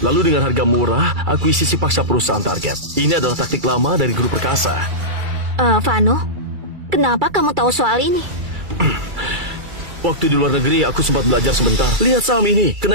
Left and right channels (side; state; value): left; late; 2.3 ms